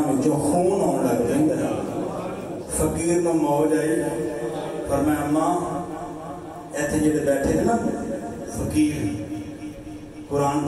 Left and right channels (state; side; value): identical; both; correlation 1.00